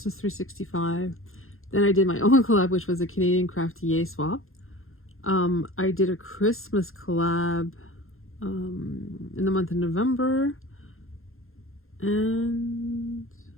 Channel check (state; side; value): late; right; 0.61 ms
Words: 365. Then I did my own collab, which was a Canadian Crafty Yay swap. I did a Christmas collab in the month of November. And